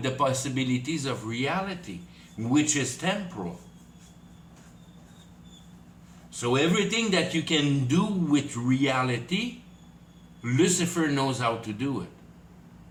the possibilities of reality, which is temporal. So everything that you can do with reality, Lucifer knows how to do it.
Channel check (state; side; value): identical; both; correlation 1.00